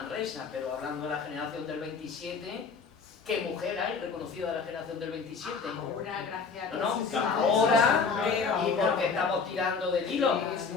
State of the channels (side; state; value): right; quieter; 5.2 dB